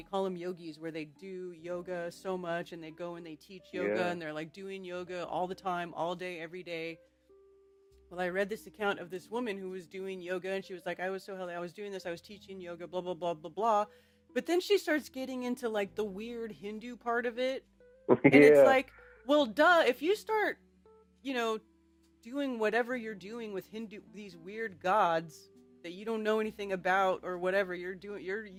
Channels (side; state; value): both; identical; correlation 1.00